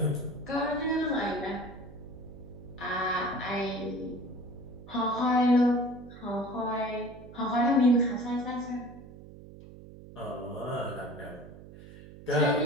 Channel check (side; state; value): right; noise; hum, 17 dB below the sound